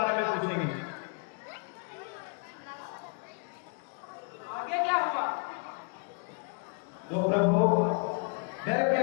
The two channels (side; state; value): right; quieter; 34.7 dB